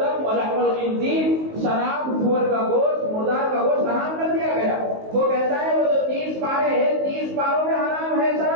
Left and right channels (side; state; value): left; late; 19 ms